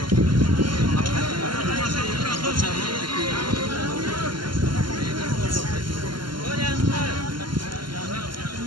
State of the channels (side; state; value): left; late; 0.72 ms